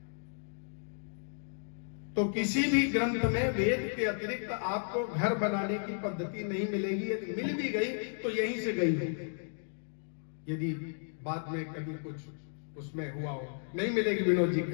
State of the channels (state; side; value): silent; right; digital silence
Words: तो किसी भी ग्रंथ में वेद के अतिरिक्त आपको घर बनाने की पद्धति नहीं मिलेगी। यदि मिल भी गई तो यहीं से गई होगी, यदि बाद में कभी कुछ उसमें हुआ हो, नहीं मिलेगी। विनोद जी